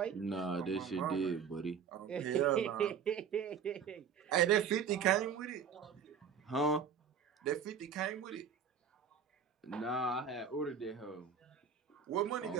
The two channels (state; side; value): quieter; left; 7.0 dB